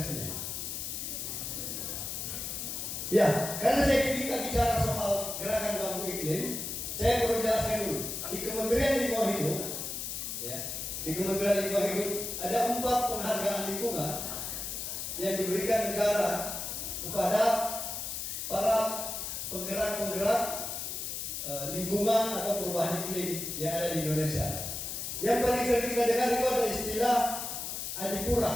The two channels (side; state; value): left; noise; hiss, 5 dB below the sound